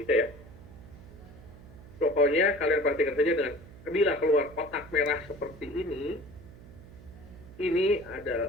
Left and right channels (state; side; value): noise; right; hum, 19 dB below the sound